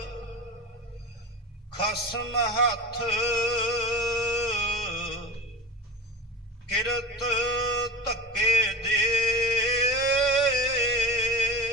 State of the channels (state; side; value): normal; both; correlation 0.33